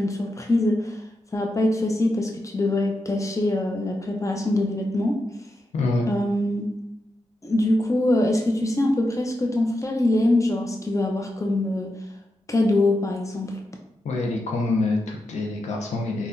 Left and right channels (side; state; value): both; normal; correlation 0.87